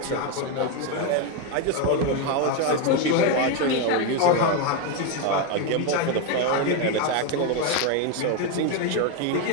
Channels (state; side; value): different; both; correlation 0.02